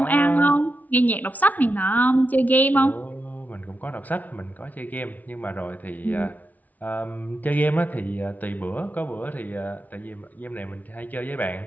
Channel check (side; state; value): right; late; 0.075 ms